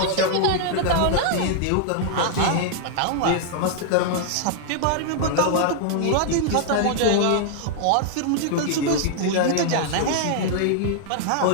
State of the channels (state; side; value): different; both; correlation -0.01